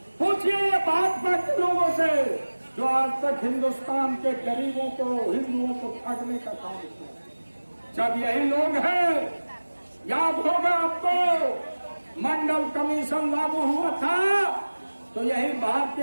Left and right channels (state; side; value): inverted; both; correlation -1.00